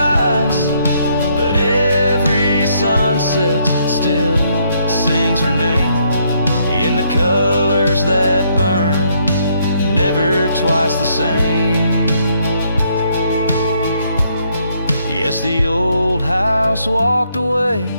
But every sunset still sings her name in the colors that burn, never twice the same. Yes, the old house walked away,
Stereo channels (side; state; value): both; inverted; correlation -0.72